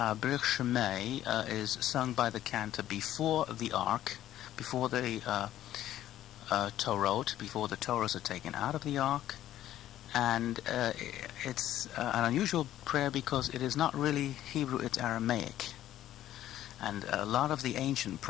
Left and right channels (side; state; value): right; quieter; 12.8 dB